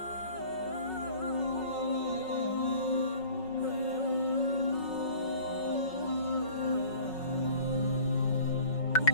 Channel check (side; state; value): right; late; 5.4 ms